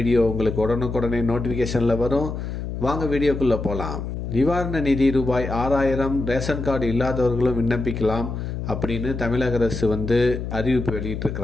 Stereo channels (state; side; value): noise; left; hum, 5 dB below the sound